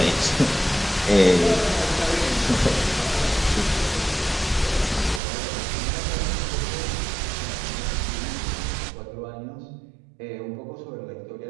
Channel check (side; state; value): left; drops out; at 5.2 s